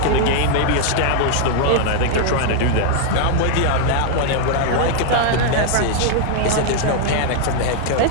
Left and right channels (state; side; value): different; both; correlation 0.00